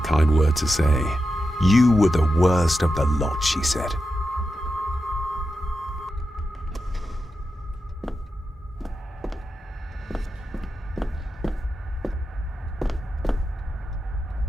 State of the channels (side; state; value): both; normal; correlation 0.89